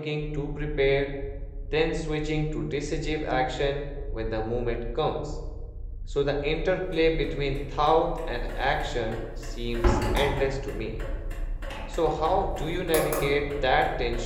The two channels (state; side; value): identical; both; correlation 1.00